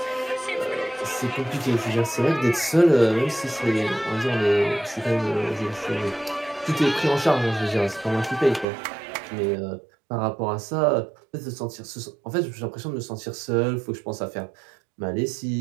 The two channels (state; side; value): drops out; left; at 8.7 s